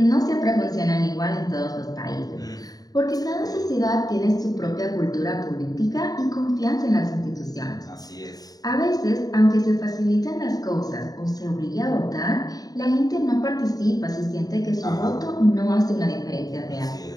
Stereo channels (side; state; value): right; late; 0.18 ms